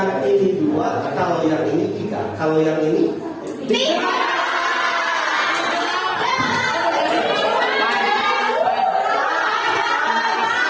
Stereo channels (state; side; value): identical; both; correlation 1.00